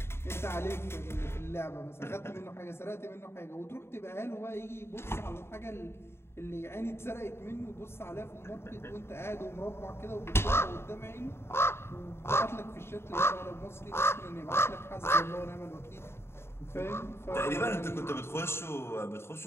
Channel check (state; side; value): late; right; 0.12 ms